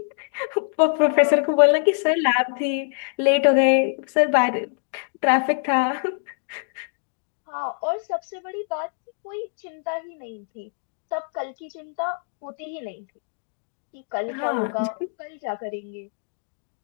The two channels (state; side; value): silent; right; digital silence